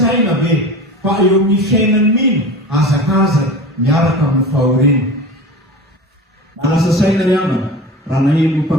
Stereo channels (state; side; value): normal; both; correlation 0.33